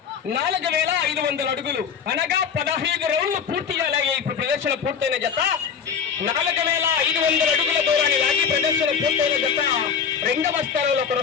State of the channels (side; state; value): right; quieter; 6.9 dB